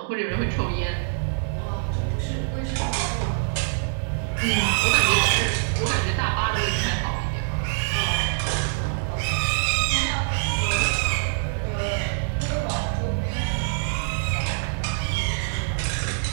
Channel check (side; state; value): left; silent; digital silence